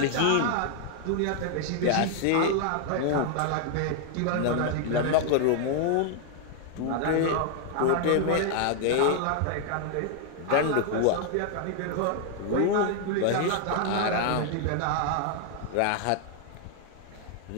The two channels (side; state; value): both; different; correlation 0.00